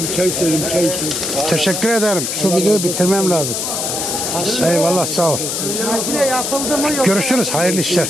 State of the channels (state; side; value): noise; left; hiss, 2 dB below the sound